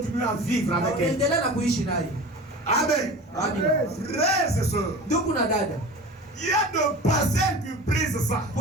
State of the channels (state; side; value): normal; both; correlation 0.35